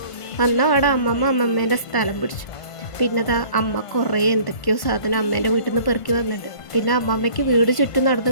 വന്ന അവിടെ അമ്മമ്മേൻ്റെ സ്ഥലം പിടിച്ചു. പിന്നെ അമ്മ കുറേ എന്തൊക്കെയോ സാധനം അമ്മേൻ്റെ വീട്ടിൽ നിന്ന് പെറുക്കി വന്നിട്ടുണ്ട്. പിന്നെ അമ്മമ്മയ്ക്ക് വീട് ചുറ്റും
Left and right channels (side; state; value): right; late; 1.5 ms